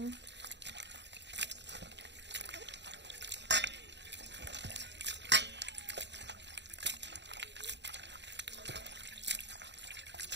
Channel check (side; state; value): left; late; 0.51 ms